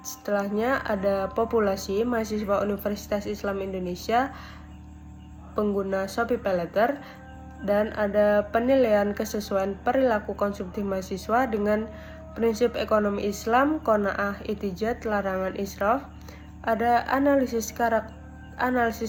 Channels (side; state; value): both; identical; correlation 1.00